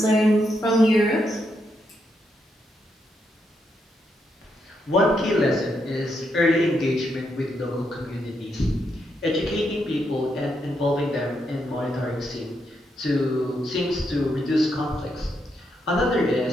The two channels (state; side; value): normal; both; correlation 0.80